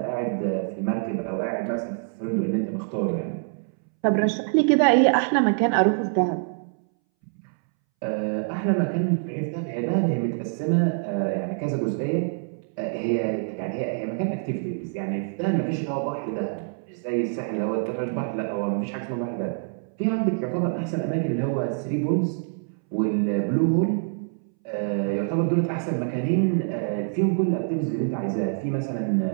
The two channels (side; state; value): left; silent; 61 dB below the other